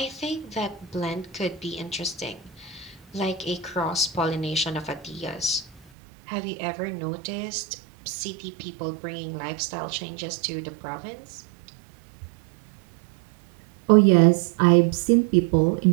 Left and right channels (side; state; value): left; drops out; at 5.8 s